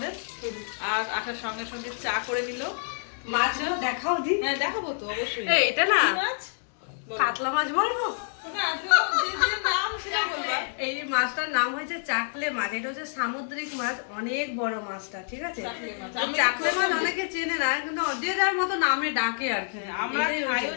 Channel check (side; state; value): right; silent; digital silence